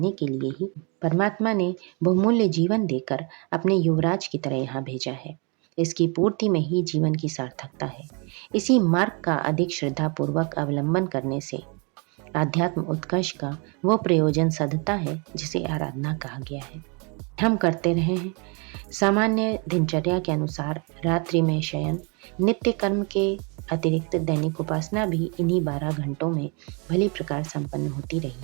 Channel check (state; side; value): quieter; left; 32.9 dB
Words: के लिए ही परमात्मा ने बहुमूल्य जीवन देकर अपने युवराज की तरह यहाँ भेजा है। इसकी पूर्ति में ही जीवन की सार्थकता है। इसी मार्ग का अधिक श्रद्धापूर्वक अवलंबन करने से आध्यात्म उत्कर्ष का वो प्रयोजन सधता है जिसे आराधना कहा गया है। हम करते रहे हैं। सामान्य दिनचर्या के अनुसार रात्रि में शयन, नित्य कर्म के अतिरिक्त दैनिक उपासना भी इन्हीं 12 घंटों में भली प्रकार संपन्न होती रही